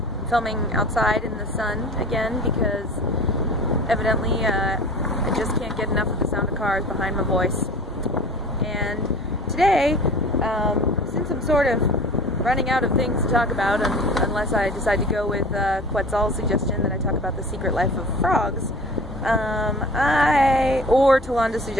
filming outside in the sun again because evidently I just can't get enough of the sound of cars behind my voice. And today, since I'm sort of running out of things to talk about, unless I decide to go with Quetzal's suggestion that I talk about the secret life of frogs, or Tolanda's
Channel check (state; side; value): normal; both; correlation 0.40